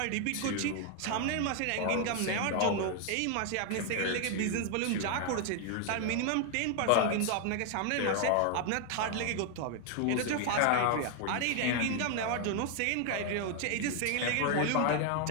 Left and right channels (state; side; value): different; both; correlation 0.00